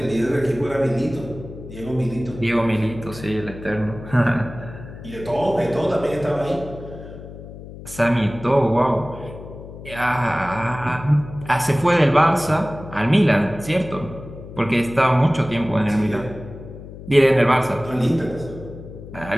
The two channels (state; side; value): noise; left; hum, 14 dB below the sound